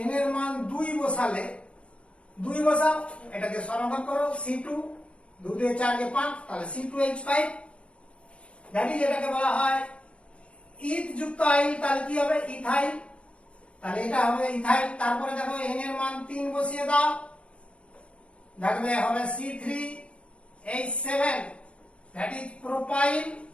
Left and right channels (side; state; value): right; late; 0.060 ms